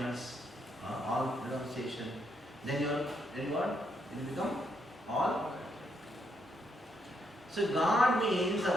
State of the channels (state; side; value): normal; both; correlation 0.77